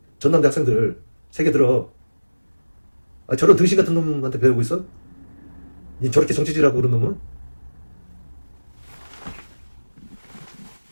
전남대 학생들 세계 들어. 저런 등신 같은 놈한테 배우고 있어? 저렇게 정치질하고 그런 놈은?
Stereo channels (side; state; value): both; inverted; correlation -1.00